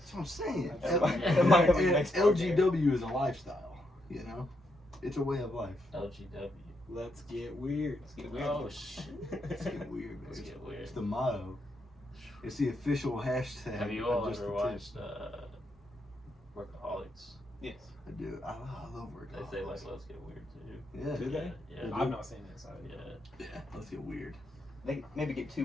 what I'm saying. That might be next LGW is a lifestyle, you know? It's a way of life. LGW. Let's get weird. Let's get weird. Oh shit. Let's get weird, man. Let's get weird. It's the motto. It's the official hashtag. Have you of all Just ever the Tip. watched Workaholics? Yes. I do. I love work. They say like let's get weird too. Yeah. Do they? Yeah. I've not seen it. So Yeah. Yeah. Let's get weird. They maybe get too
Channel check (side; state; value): both; normal; correlation 0.80